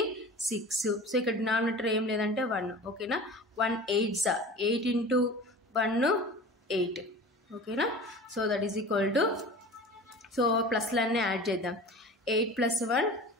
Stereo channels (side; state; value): both; normal; correlation 0.38